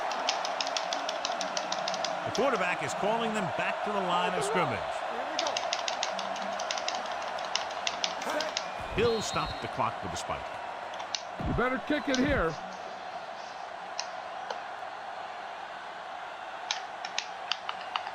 The quarterback is calling them back to the line of scrimmage. He'll stop the clock with a spike. You better kick it here.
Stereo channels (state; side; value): identical; both; correlation 1.00